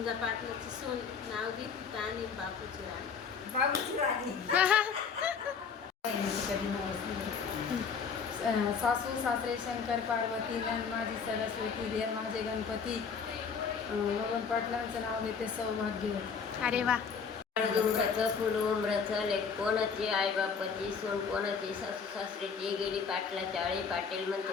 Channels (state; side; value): quieter; right; 6.0 dB